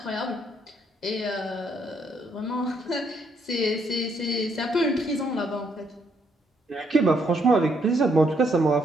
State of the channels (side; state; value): both; normal; correlation 0.72